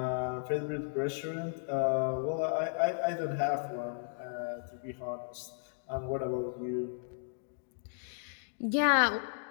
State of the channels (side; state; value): right; silent; digital silence